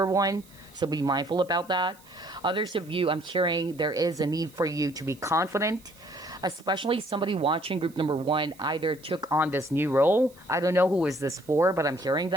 1. So be mindful about that. Others of you, I'm hearing there is a need for you to be confident, especially somebody watching group number 1 either took on this new role. I don't know who is this for, but I'm hearing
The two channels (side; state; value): right; noise; hiss, 26 dB below the sound